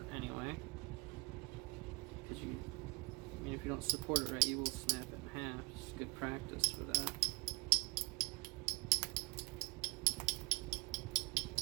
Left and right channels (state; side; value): quieter; left; 28.4 dB